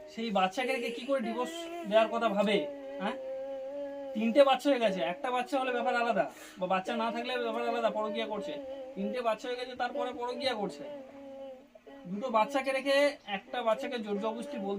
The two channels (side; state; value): both; identical; correlation 1.00